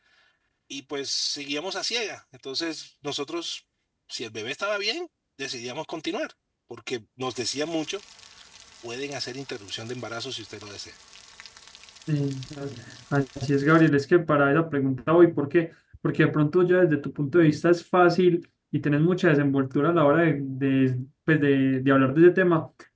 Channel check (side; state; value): both; identical; correlation 1.00